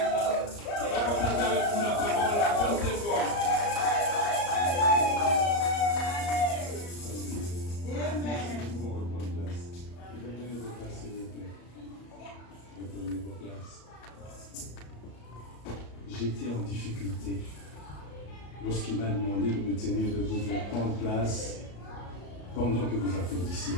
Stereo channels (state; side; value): late; right; 34 ms